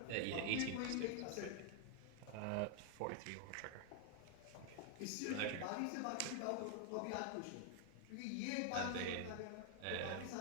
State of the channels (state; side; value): different; both; correlation 0.00